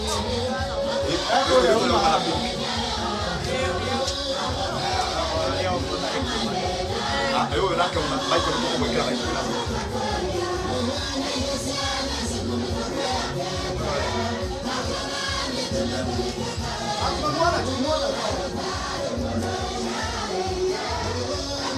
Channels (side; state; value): both; identical; correlation 1.00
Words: ayo nake una maiko no mwekera maiko